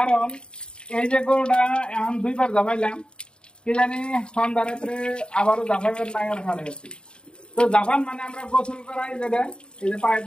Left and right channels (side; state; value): right; late; 0.051 ms